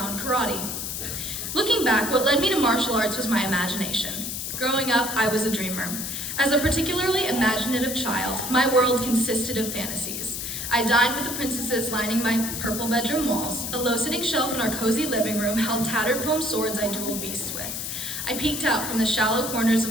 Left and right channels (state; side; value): noise; left; hiss, 5 dB below the sound